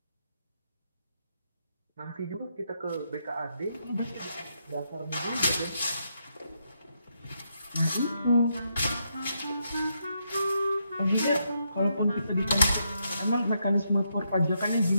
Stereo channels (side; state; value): both; inverted; correlation -0.80